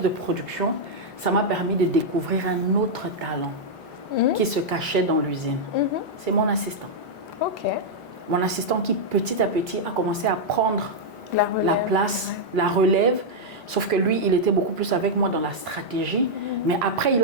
de production, ça m'a permis de découvrir un autre talent qui se cachait dans l'usine. C'est mon assistant. Mon assistant qui petit à petit a commencé à prendre la place, la relève. Sauf que lui, il était beaucoup plus avec moi dans la stratégie. Mais après, il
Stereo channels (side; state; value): both; normal; correlation -0.04